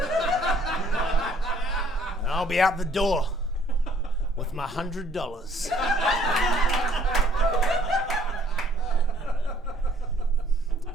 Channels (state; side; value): normal; both; correlation 0.61